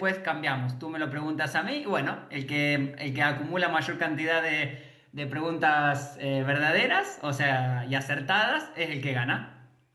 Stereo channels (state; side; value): identical; both; correlation 1.00